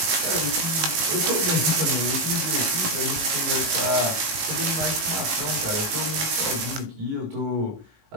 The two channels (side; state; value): left; late; 18 ms